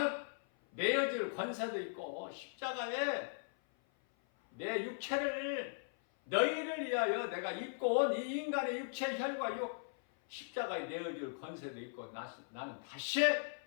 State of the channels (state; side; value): silent; right; 52 dB below the other